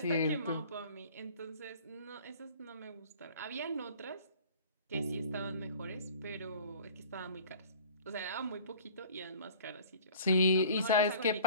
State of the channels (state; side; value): inverted; both; correlation -0.48